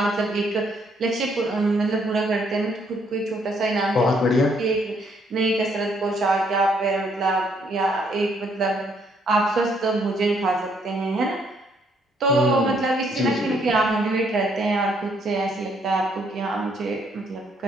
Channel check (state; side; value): normal; both; correlation 0.69